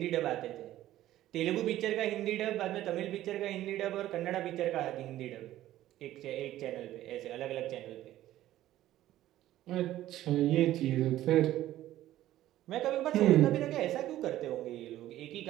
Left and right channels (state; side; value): quieter; left; 14.0 dB